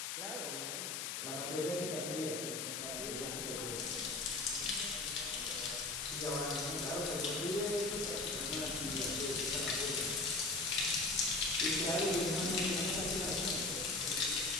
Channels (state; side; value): noise; left; hiss, 3 dB below the sound